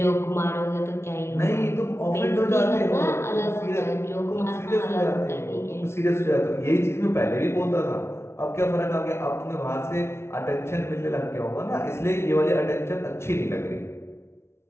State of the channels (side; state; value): right; late; 0.12 ms